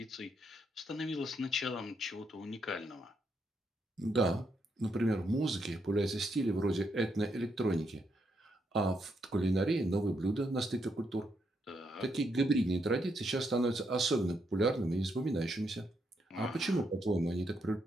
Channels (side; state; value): both; normal; correlation 0.78